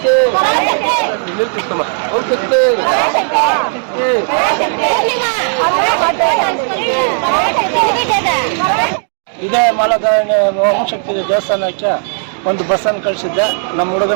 ಇದೇ ಮಾಲಧಾರಣೆ ಓಂಶಕ್ತಿ ದೇವಸ್ಥಾನಕ್ಕೆ ಒಂದು ಬಸ್ಸನ್ನು ಕಳಿಸಿದ್ದೆ ನಮ್ಮ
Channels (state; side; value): silent; left; 59 dB below the other